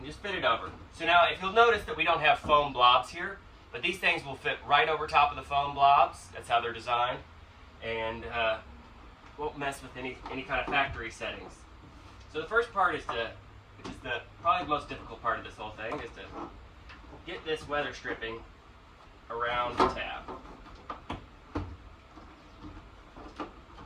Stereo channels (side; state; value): both; identical; correlation 1.00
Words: just fit it over. So now if you'll notice that we don't have foam blobs here, but these things will fit right over top of the foam blobs. That's how they're designed, and won't mess with any kind of factory settings. So the first part is which is probably the most difficult part of this whole thing, is to get this weather stripping around the tab.